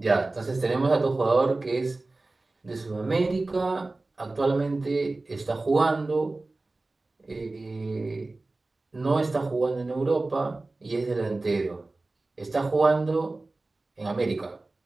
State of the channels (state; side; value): quieter; left; 3.2 dB